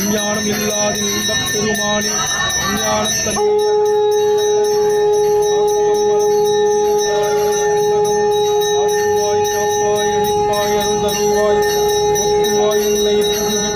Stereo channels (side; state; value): both; identical; correlation 1.00